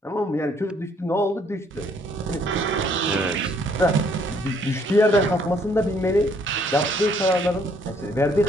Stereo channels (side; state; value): both; normal; correlation 0.65